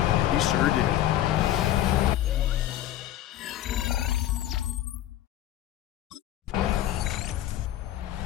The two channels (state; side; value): quieter; right; 12.7 dB